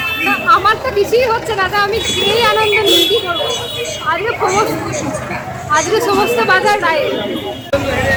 না, আমার তো কিছুই হচ্ছে না, তা আমি খেয়েই আনন্দ নিই, কি করবো? আজকে সমস্ত বাজার নাই।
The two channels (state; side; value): identical; both; correlation 1.00